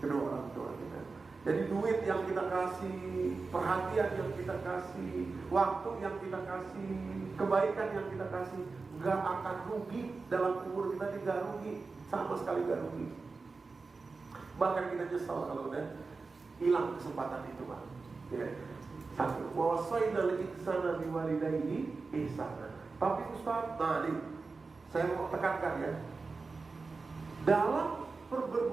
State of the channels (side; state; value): left; quieter; 4.1 dB